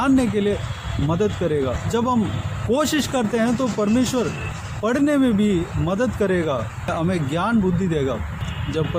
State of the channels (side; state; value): both; identical; correlation 1.00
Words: के लिए मदद करेगा। जब हम कोशिश करते हैं तो परमेश्वर पढ़ने में भी मदद करेगा, हमें ज्ञान बुद्धि देगा। जब